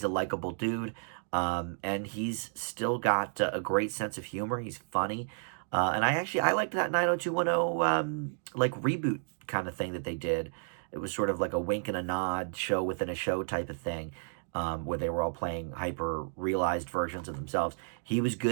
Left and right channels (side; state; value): left; silent; digital silence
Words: a likable dude, and he's still got a great sense of humor. He's funny. And I liked that 90210 like reboot kind of thing that they did. It was sort of like a wink and a nod show within a show type of thing, where they were all playing hyper realized versions of themselves. He was